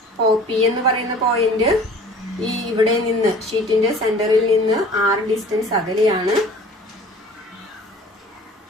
പി എന്ന് പറയുന്ന പോയിന്റ് ഈ ഇവിടെ നിന്ന് ഷീറ്റിന്റെ സെന്ററിൽ നിന്ന് r ഡിസ്റ്റൻസ് അകലെയാണ്.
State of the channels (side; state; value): both; normal; correlation 0.47